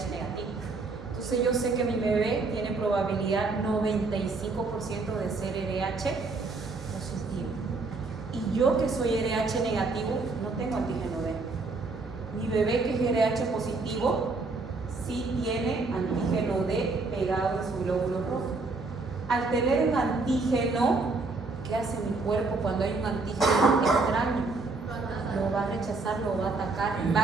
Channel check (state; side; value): quieter; left; 3.8 dB